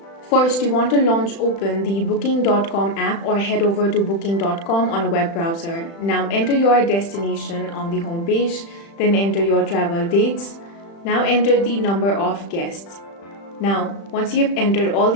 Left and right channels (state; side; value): late; right; 35 ms